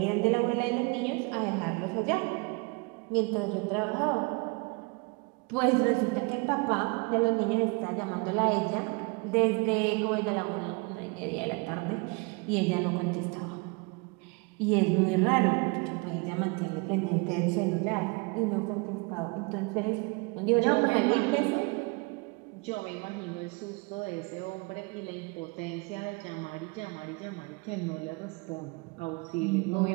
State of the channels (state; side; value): quieter; left; 29.1 dB